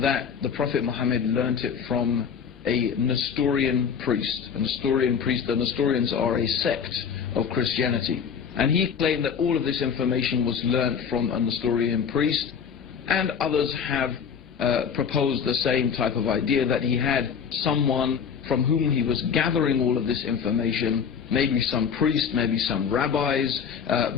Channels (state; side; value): quieter; right; 7.0 dB